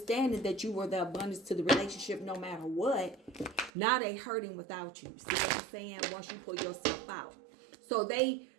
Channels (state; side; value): drops out; left; at 3.7 s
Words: that you were the abundance to the relationship no matter what. Now they hurting without you. See what I'm saying? Once you pull yourself out. So they